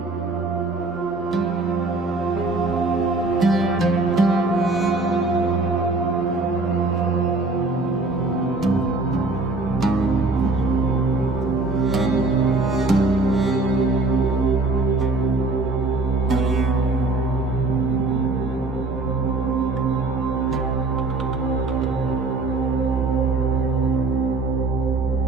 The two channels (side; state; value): left; quieter; 3.3 dB